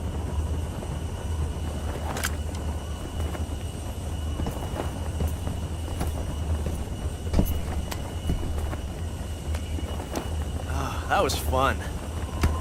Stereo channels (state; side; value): identical; both; correlation 1.00